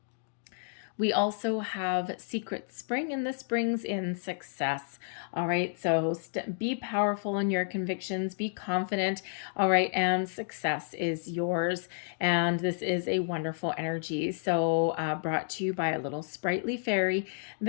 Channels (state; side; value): silent; right; digital silence